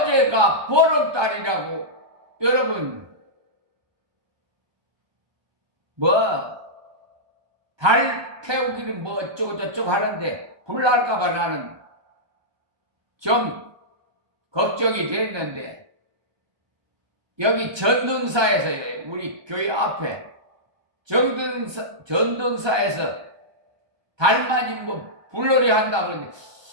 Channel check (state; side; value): late; left; 1.2 ms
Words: 보름달이라고 여러분 달 태우기는 어쩌고 저쩌고 하는데 불 날까봐 나는 좀 걱정이 됐는데 여기 전등사에서 우리 교회 앞에 전등사에서 달맞이 뭐 불놀이 한다 그러는데